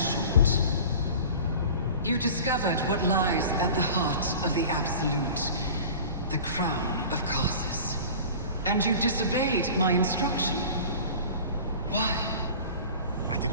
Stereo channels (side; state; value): both; inverted; correlation -0.39